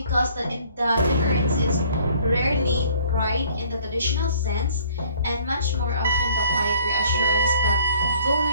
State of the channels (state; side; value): inverted; both; correlation -0.57